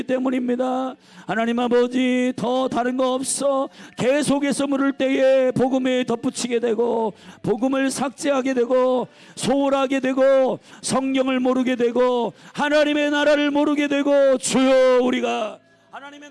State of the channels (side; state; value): both; identical; correlation 1.00